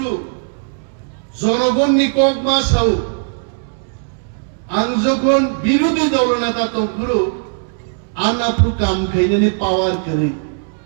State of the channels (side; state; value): left; silent; digital silence